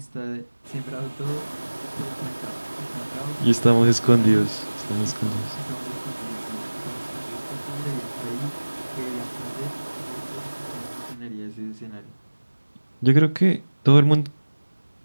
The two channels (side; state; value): both; inverted; correlation -1.00